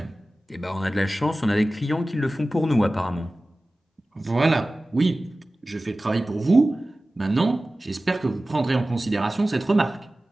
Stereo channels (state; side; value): normal; both; correlation 0.97